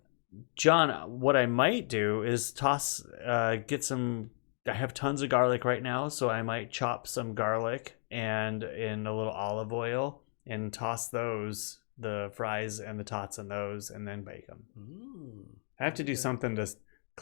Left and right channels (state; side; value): silent; right; 55 dB below the other